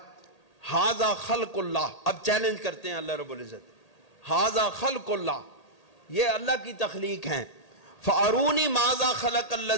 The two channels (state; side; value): late; right; 1.8 ms